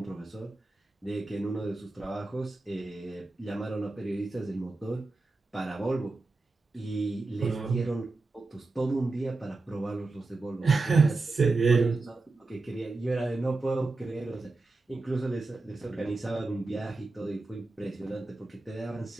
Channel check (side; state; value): left; quieter; 3.4 dB